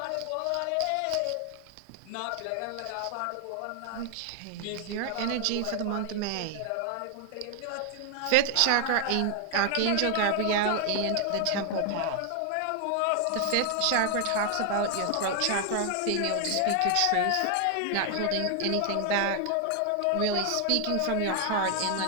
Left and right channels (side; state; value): both; different; correlation 0.00